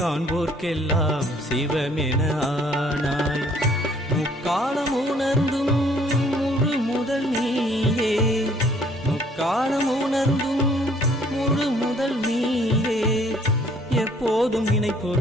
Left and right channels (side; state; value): both; normal; correlation 0.60